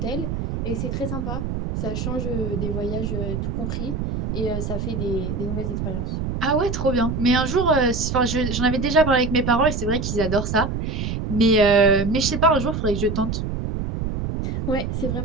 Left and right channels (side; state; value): right; noise; rumble, 3 dB below the sound